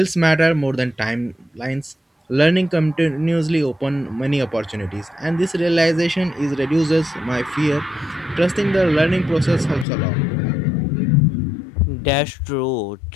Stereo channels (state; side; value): drops out; right; at 9.9 s